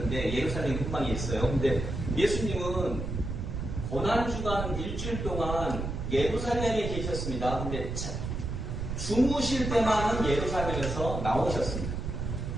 예루살렘 근방에 있어요. 근데 예수님은 고난주간 일주일 동안 예루살렘에 계셨습니다. 근데 주무실 때만은 예루살렘에서 나오셨습니다.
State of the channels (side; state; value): right; noise; rumble, 4 dB below the sound